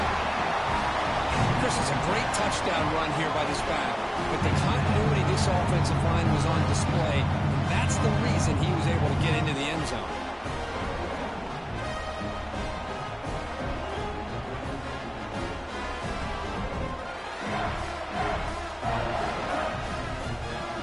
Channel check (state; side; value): identical; both; correlation 1.00